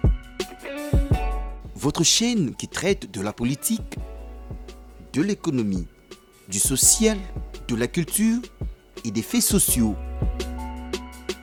Votre chaîne qui traite de la politique, de l'économie, du social, de la culture et des faits sociaux.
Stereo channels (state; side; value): identical; both; correlation 1.00